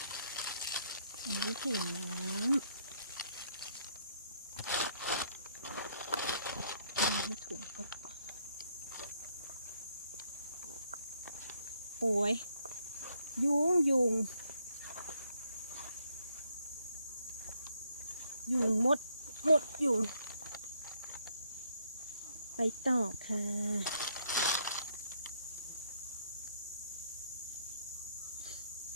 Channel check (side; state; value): both; inverted; correlation -0.70